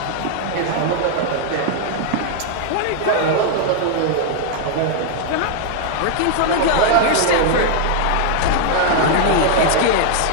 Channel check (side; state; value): both; different; correlation 0.00